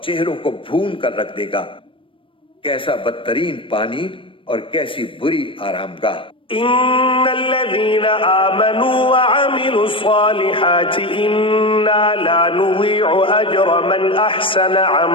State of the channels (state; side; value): late; right; 0.25 ms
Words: چہروں کو بھون کر رکھ دے گا۔ کیسا بدترین پانی اور کیسی بری آرام گاہ۔ ان الذين آمنوا وعملوا الصالحات انا لا نضيع اجر من احسن